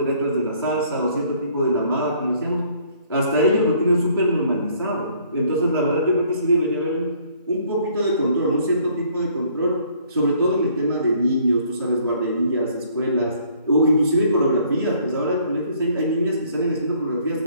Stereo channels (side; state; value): both; inverted; correlation -0.61